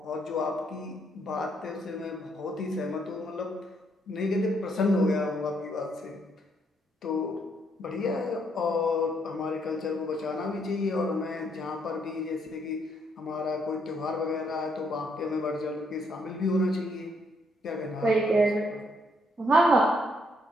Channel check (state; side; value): normal; both; correlation 0.72